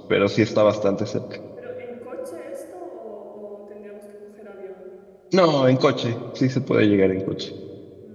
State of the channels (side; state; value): both; identical; correlation 1.00